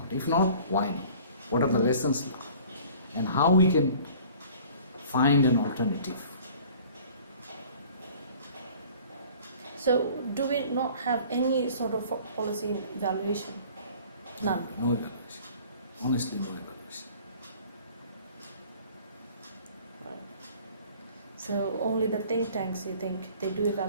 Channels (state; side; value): inverted; both; correlation -0.49